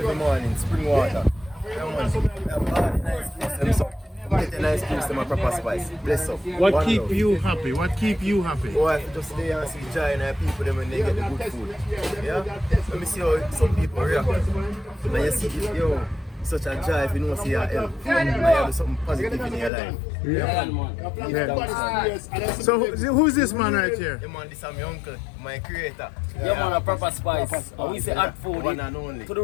morning, spring water. We have all the nice juice, them get a nice juice, them a proper spice. Bless up. What keep you happy? What keep you happy? Oh, I just lay and see joy in our people them when they get the good food. Yeah? Let me see how some people react. And you see, yo, such a joy if you know see your help. And you have something positive in your life. Yeah. Yeah. So who's this man right here? Yeah, man, this is my uncle, my creator. Yeah, man, a proper spice. And we say add food one and only. to the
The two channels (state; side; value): drops out; right; at 19.7 s